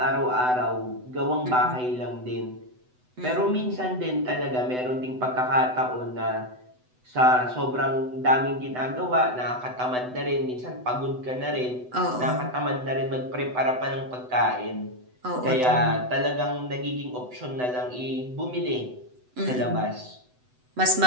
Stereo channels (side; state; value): left; late; 8.0 ms